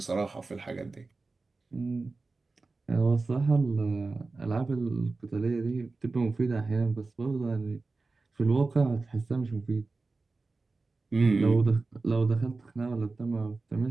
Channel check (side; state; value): left; quieter; 3.7 dB